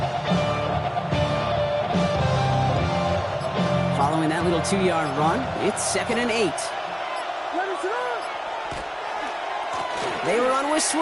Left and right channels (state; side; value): identical; both; correlation 1.00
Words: Following that little 2-yard run, it's 2nd and 8. They run with